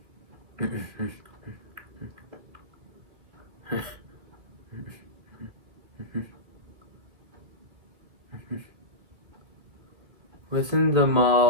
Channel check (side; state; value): left; late; 2.3 ms